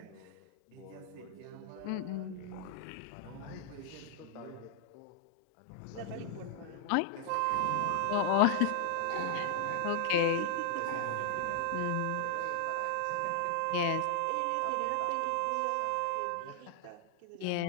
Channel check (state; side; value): different; both; correlation -0.01